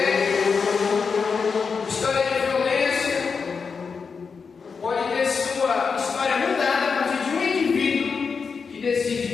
história de violência, pode ter sua história mudada a partir de um indivíduo que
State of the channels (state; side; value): quieter; right; 5.4 dB